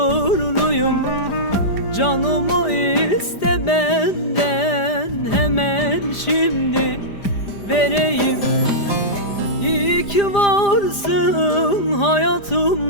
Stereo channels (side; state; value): right; late; 5.0 ms